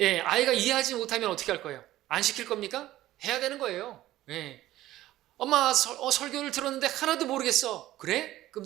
아이가 이해하지 못하면 어떻게 할 거예요? 안 시킬 겁니까? 해야 되는 거예요. 예. 엄마 설교를 들었는데 하나도 모르겠어. 그래? 그럼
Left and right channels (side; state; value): left; quieter; 15.1 dB